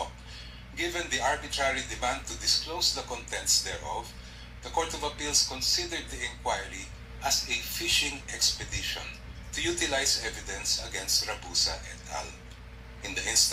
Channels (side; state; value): both; identical; correlation 1.00